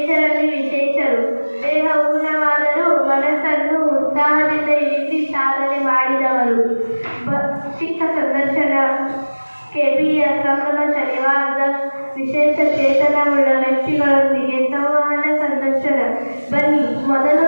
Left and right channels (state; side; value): inverted; both; correlation -1.00